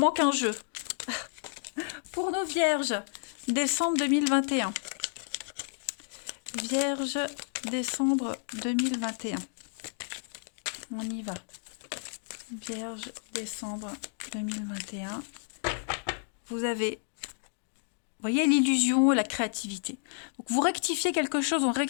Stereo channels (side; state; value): right; silent; digital silence